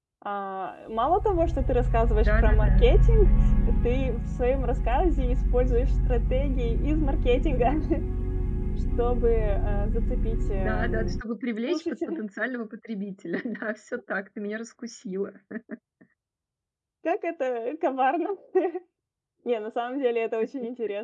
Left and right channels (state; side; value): identical; both; correlation 1.00